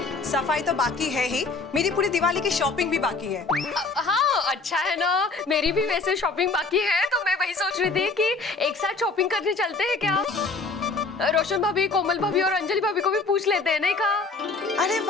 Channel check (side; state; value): right; quieter; 3.9 dB